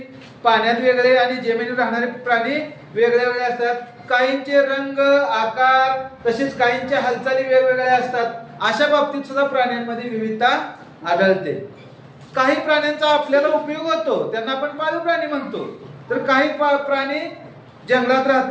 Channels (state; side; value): identical; both; correlation 1.00